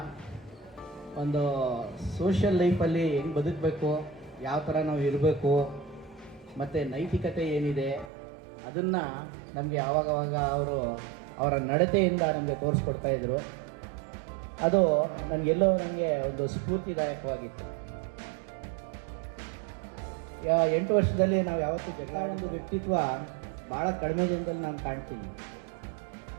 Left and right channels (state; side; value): drops out; left; at 8.1 s